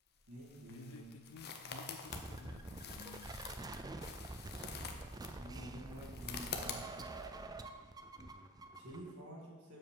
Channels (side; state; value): both; normal; correlation 0.39